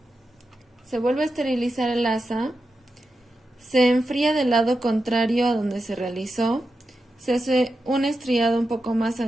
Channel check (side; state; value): both; normal; correlation 0.89